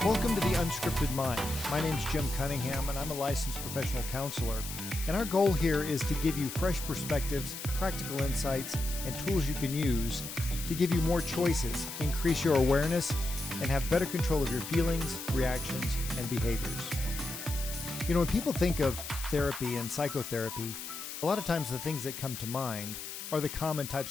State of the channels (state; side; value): noise; left; hiss, 8 dB below the sound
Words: Welcome to The Unscripted Mind. My name's Jim Cunningham, and I'm a licensed professional counselor. And our goal here is to give you fresh perspectives, practical insights, and tools you can use to give you more choices, increase your awareness, and have better control of your feelings, reactions, and behaviors. You know, when people think of therapy and psychotherapy, a lot of times the things that come to mind are the common